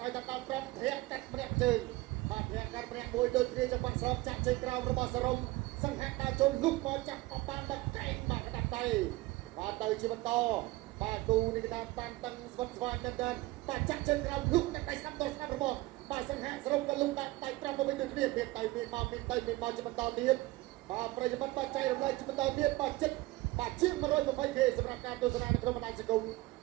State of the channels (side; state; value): left; quieter; 19.9 dB